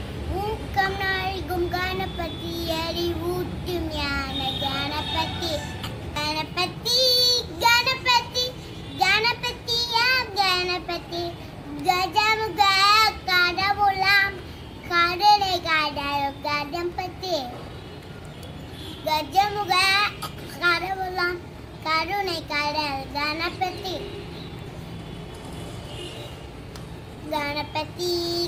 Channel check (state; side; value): identical; both; correlation 1.00